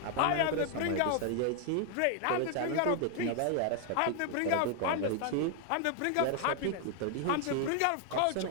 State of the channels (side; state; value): both; different; correlation 0.00